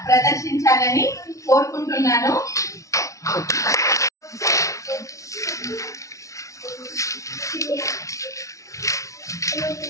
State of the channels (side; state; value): right; late; 0.15 ms